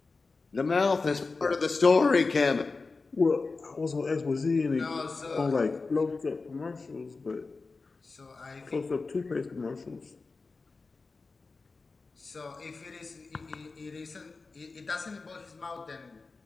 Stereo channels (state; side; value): quieter; right; 4.0 dB